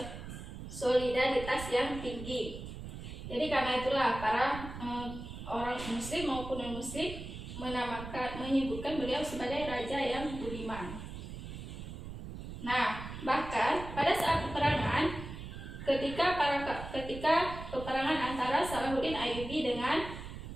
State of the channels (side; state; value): right; noise; rumble, 10 dB below the sound